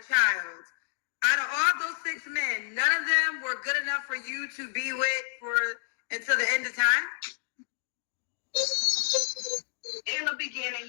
child. Out of all those 6 men, none of them were good enough for you to be with until the end of time? In the beginning,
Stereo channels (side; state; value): right; silent; digital silence